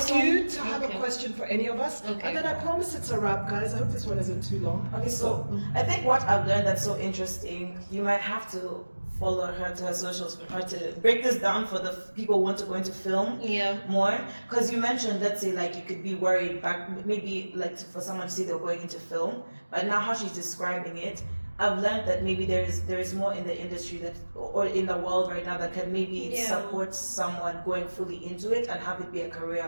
you to have a question for any of us, Okay. and then I promise it's a wrap, guys. I hope this one isn't too long. Okay, so I think what I've learned that's so interesting, you might have to follow her to her socials for her to break this down for the people who want to go into film more. Because you mentioned, let's say, like you could be worried back, maybe like for someone to see they're going into film, but now how she's describing it, I've learned that maybe there is more in the industry that, or in the world right now, that can maybe support someone going fully into it and have it be a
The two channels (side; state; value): both; inverted; correlation -1.00